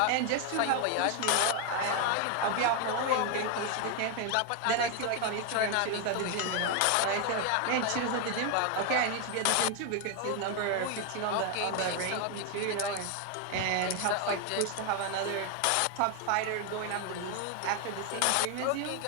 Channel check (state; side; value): different; both; correlation 0.01